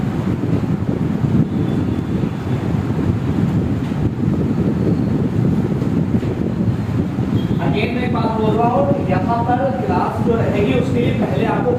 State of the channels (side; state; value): both; identical; correlation 1.00